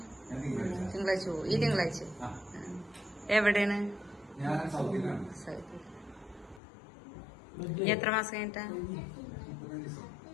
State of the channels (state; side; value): drops out; right; at 6.6 s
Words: തിങ്കളാഴ്ച പോവും ഈ തിങ്കളാഴ്ച എവിടെയാണ് ഇനി എത്ര മാസം കഴിഞ്ഞിട്ടാ